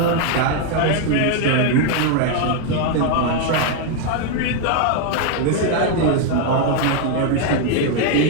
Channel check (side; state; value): both; different; correlation 0.01